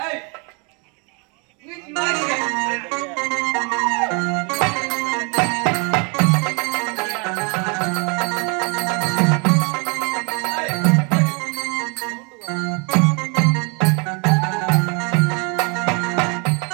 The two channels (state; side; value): quieter; left; 33.8 dB